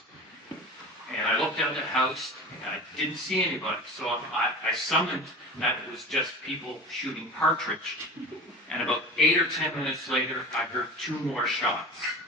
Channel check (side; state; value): both; normal; correlation 0.34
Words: And I looked out the house, and I didn't see anybody. So I summoned that it was just people shooting partridge. And about 8 or 10 minutes later, I heard 2 more shots.